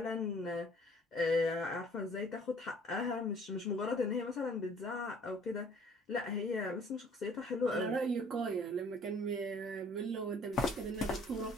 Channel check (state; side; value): normal; both; correlation 0.55